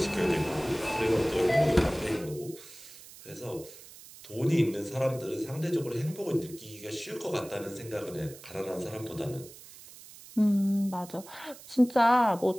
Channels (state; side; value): noise; right; hiss, 18 dB below the sound